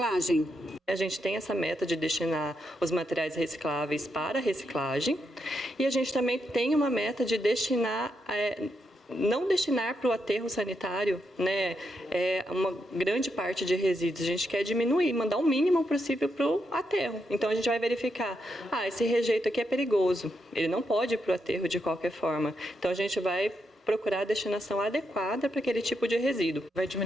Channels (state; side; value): normal; both; correlation 0.82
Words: A gente tem essa meta de destinar os materiais recicláveis para reciclagem e a gente também tem uma meta de não destinar para o aterro sanitário, né, uma grande parte de resíduos. A gente quer diminuir, mandar o mínimo possível para o aterro. Então a gente vai verificar, esse rejeito aqui é perigoso, ele não pode ir para o aterro de qualquer forma. Então a gente vai procurar a destinação adequada para aquele tipo de resíduo. Vai